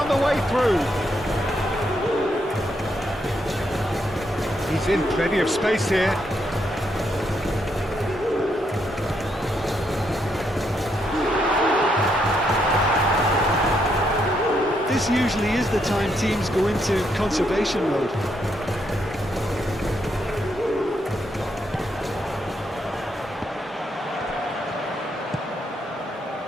the way through. He's in plenty of space here. This usually is the time teams go into conservation mode.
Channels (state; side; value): normal; both; correlation 0.77